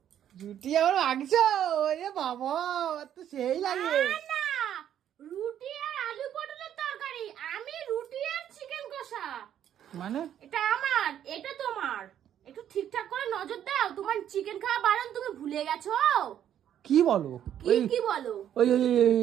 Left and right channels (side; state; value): left; quieter; 10.3 dB